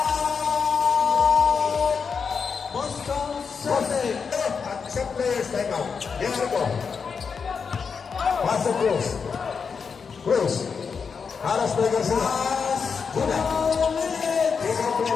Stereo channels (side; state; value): right; quieter; 5.8 dB